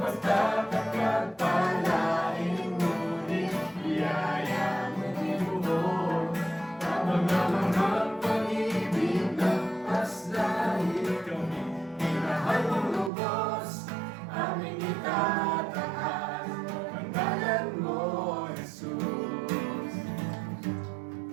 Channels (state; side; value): drops out; left; at 13.1 s